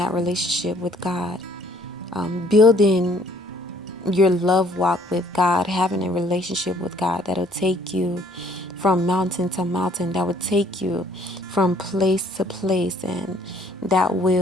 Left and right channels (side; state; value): both; normal; correlation 0.61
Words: relationship with God, building your love walk with God, having a relationship with God that'll take you from mountain to mountain, that will take you from place to place, and that